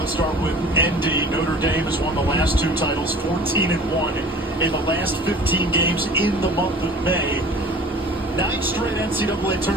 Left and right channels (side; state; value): both; normal; correlation 0.44